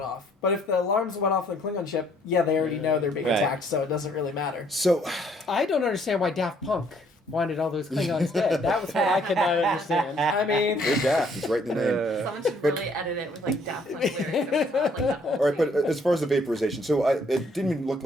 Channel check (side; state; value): both; normal; correlation 0.64